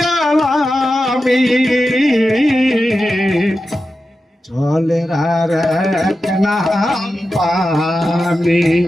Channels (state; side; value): normal; both; correlation 0.91